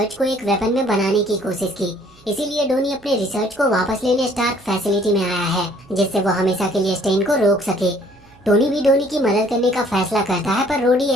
को एक वेपन में बनाने की कोशिश की, इसीलिए डोनी अपने रिसर्च को वापस लेने स्टार्क फैसिलिटी में आया है, जिससे वो हमेशा के लिए स्टेन को रोक सके। टोनी भी डोनी की मदद करने का फैसला करता है, पर रोडी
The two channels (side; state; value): right; noise; hum, 29 dB below the sound